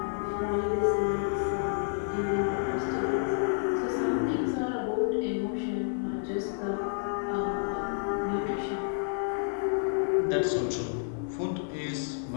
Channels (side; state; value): right; silent; 58 dB below the other